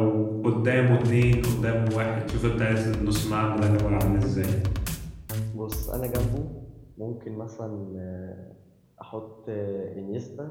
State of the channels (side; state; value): both; identical; correlation 1.00